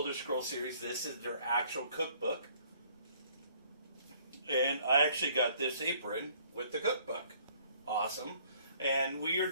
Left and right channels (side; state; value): both; inverted; correlation -0.60